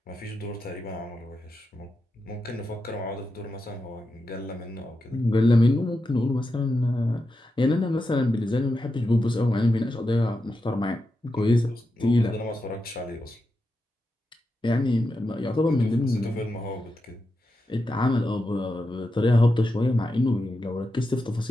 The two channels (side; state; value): both; normal; correlation 0.88